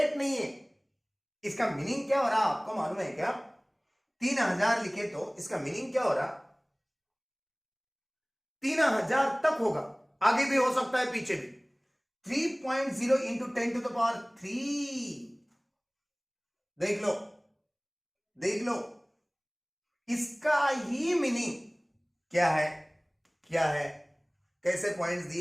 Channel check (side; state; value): both; identical; correlation 1.00